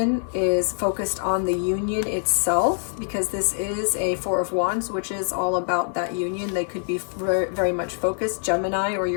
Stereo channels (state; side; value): silent; right; digital silence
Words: is focused on the union itself, because this is a Four of Wands, which is all about that union. They could be very much focused, Gemini or